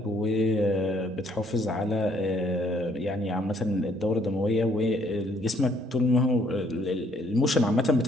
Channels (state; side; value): normal; both; correlation 0.66